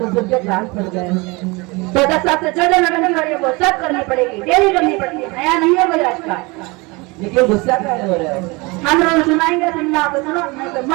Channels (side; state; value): left; quieter; 25.6 dB